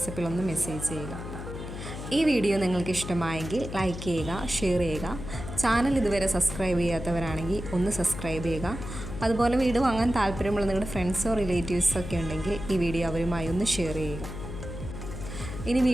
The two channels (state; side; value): noise; left; hum, 9 dB below the sound